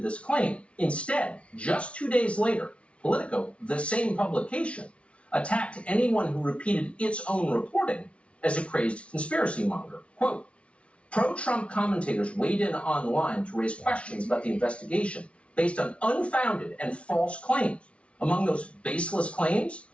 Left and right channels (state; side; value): late; right; 0.061 ms